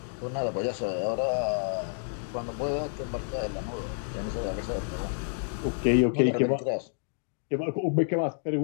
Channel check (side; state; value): right; silent; digital silence